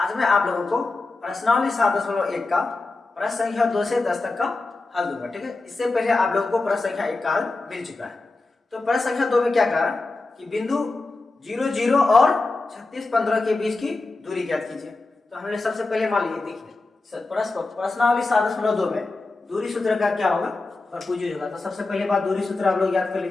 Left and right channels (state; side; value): quieter; right; 3.4 dB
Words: मैं आप लोगों को प्रश्नावली 7.1 का प्रश्न संख्या 2 से 10 तक का हल दूंगा। ठीक है, इससे पहले आप लोगों को प्रश्न संख्या 1 का हल मिल चुका है। तो प्रश्न संख्या 2 में क्या कहा कि बिंदु 0 0 और 36 15 के बीच की दूरी ज्ञात कीजिए। तो हमने सबसे पहले मान लीजिए, देखिए प्रश्नावली 7.2 में दूरी सूत्र का क्या होगा, भरपूर यूज होगा। तो सबसे पहले बात दूरी सूत्र आप लोग याद कर